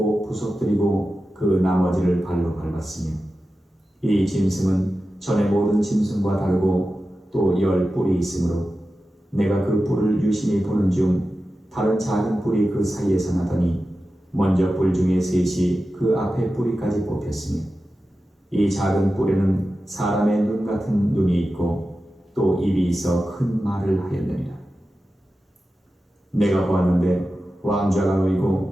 부서뜨리고 그 나머지를 발로 밟았으며 이 짐승은 전에 모든 짐승과 다르고 또 10뿔이 있으므로 내가 그 뿔을 유심히 보는 중 다른 작은 뿔이 그 사이에서 나더니 먼저 뿔 중에 셋이 그 앞에 뿌리까지 뽑혔으며 이 작은 뿔에는 사람의 눈 같은 눈이 있고 또 입이 있어 큰 말을 하였느니라. 내가 보았는데 왕좌가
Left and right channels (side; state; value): both; normal; correlation 0.93